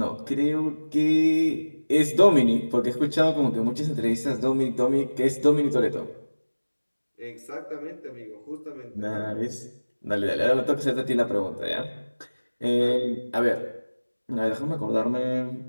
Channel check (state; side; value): inverted; both; correlation -1.00